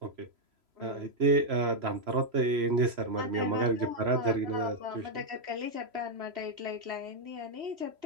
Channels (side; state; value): left; late; 3.0 ms